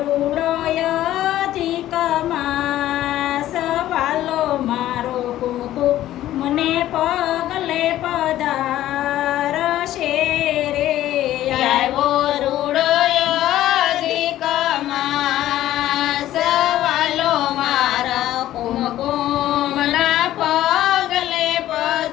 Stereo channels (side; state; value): right; quieter; 13.6 dB